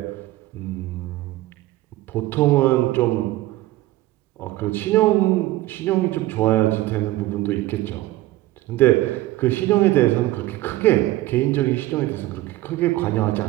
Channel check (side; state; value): left; quieter; 16.9 dB